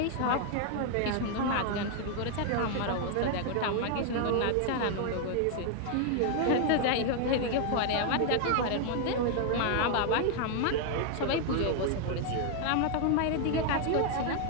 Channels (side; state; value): both; different; correlation 0.00